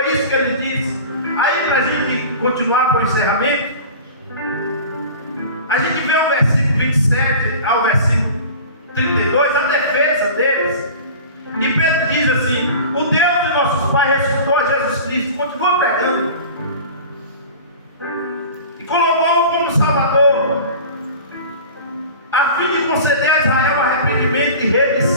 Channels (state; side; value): inverted; both; correlation -0.38